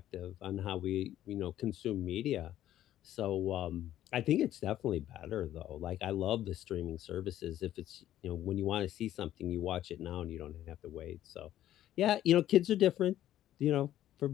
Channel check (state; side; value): quieter; right; 12.6 dB